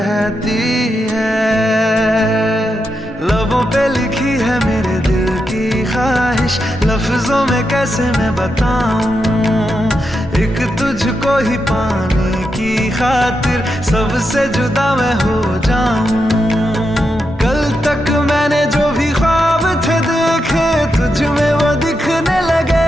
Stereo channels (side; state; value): both; normal; correlation 0.85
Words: है। लबों पे लिखी है मेरे दिल की ख्वाहिश, लफ्जों में कैसे मैं बताऊं, एक तुझको ही पाने की खातिर सबसे जुदा मैं हो जाऊं। कल तक मैंने जो भी ख्वाब थे देखे तुझ में वो दिखने